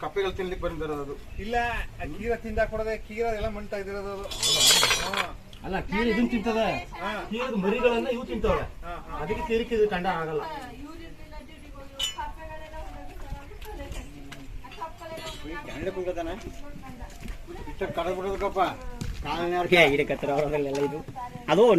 ಕಪ್ಪೆಗಳು ತಿನ್ಲಿಕ್ಕೆ ಬಂದಿರೋದು ಇಲ್ಲ ಕೀರ ತಿಂದ ಕೊಡದೆ ಕೀರ ಎಲ್ಲ ಮಂಟ ಇದಿರೋದು ಅಲ್ಲ ಕೀರ ಇದನ್ನ ತಿಂತದೆ ಕೀರದ ಮರಿಗಳನ್ನ ಇವು ತಿಂತವೆ ಅದಕ್ಕೆ ಕೀರಿಕೆ ಇದು ಕಂಡ ಆಗಲ್ಲ ಕಡಬಿಡೋದಕ್ಕಪ್ಪ ಗಿಡಕತ್ರ ಅವರಲ್ಲೆಲ್ಲ ಇದು ಅದು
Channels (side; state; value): both; identical; correlation 1.00